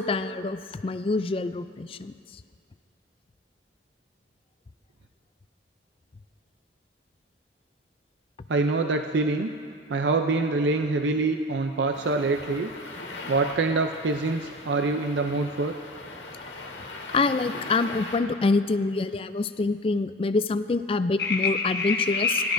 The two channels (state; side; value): normal; both; correlation 0.33